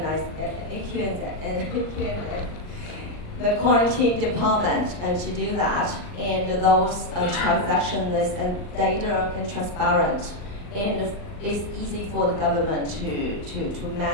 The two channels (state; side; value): late; right; 39 ms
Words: the quarantine department to do that, and those transactions and data and transparent, and it's easy for the government to